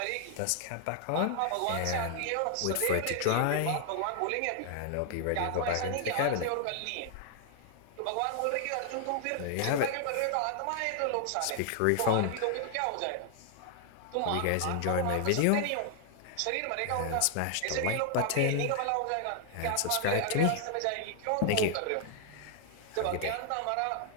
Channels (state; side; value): different; both; correlation 0.00